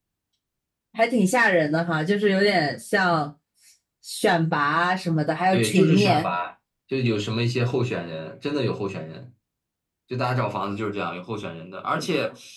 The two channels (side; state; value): both; identical; correlation 1.00